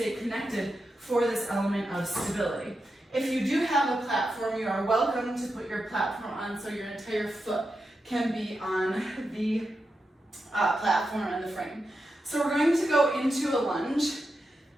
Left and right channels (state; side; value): normal; both; correlation 0.88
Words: connected for this element of stability. If you do have a platform, you are welcome to put your platform on so your entire foot can be on the platform and the frame. So we're going to go into a lunge.